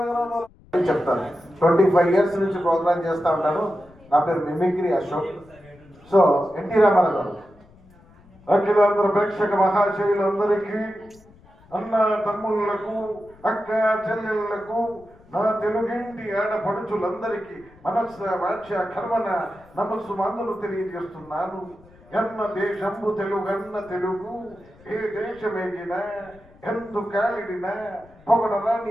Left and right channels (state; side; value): noise; left; rumble, 26 dB below the sound